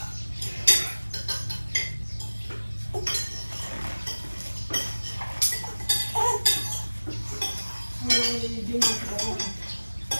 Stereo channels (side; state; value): both; inverted; correlation -1.00